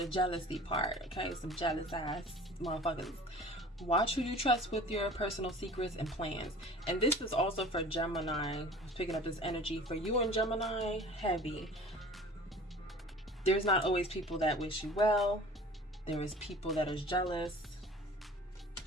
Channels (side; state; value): both; normal; correlation 0.44